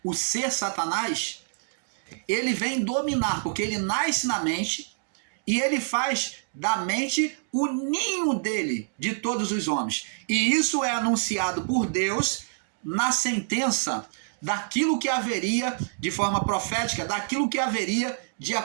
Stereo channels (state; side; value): silent; left; digital silence